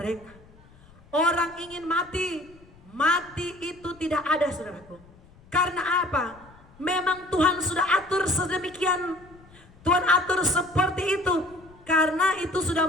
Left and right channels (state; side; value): noise; left; rumble, 25 dB below the sound